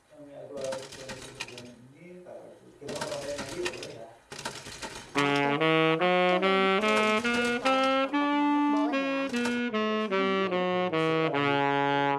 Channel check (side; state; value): both; identical; correlation 1.00